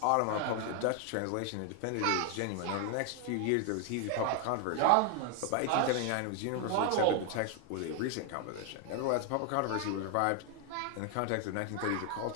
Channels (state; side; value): different; both; correlation 0.00